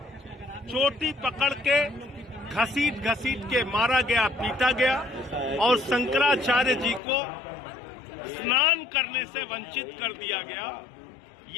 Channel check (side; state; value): right; drops out; at 7.0 s